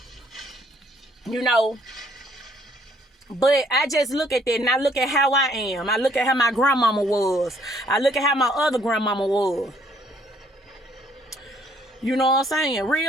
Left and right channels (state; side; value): normal; both; correlation 0.65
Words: You know. But I just look at that and I look at how I am. I look at how my grandmama was. I look at how my other grandmama was. You know what I'm saying?